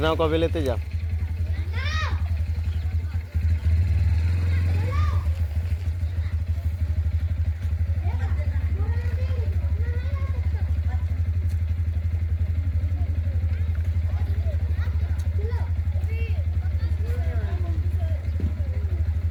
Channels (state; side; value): identical; both; correlation 1.00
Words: को भी लेते जा।